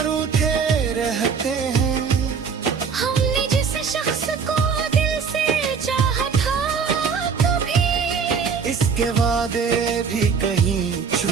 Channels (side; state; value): left; quieter; 5.9 dB